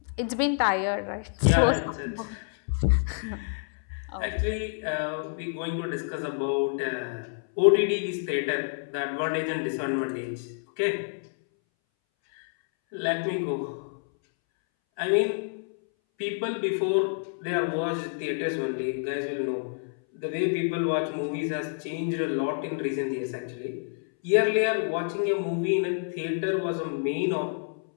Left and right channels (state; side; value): silent; right; 59 dB below the other